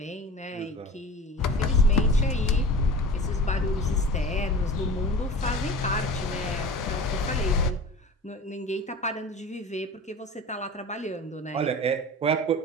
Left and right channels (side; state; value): both; normal; correlation 0.36